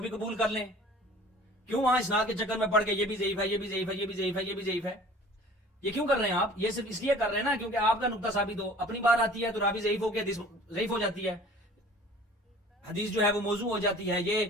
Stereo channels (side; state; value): both; normal; correlation 0.47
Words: بھی قبول کر لیں. کیوں وہاں اسناد کے چکر میں پڑھ کے یہ بھی ضعیف ہے، یہ بھی ضعیف ہے، یہ بھی ضعیف ہے، یہ بھی ضعیف ہے؟ یہ کیوں کر رہے ہیں آپ؟ یہ صرف اس لیے کر رہے ہیں نا کیونکہ آپ کا نقطہ ثابت ہو. اپنی بار آتی ہے تو راوی ضعیف ہو کے حدیث ضعیف ہو جاتی ہے، حدیث جو ہے وہ موضوع ہو جاتی ہے.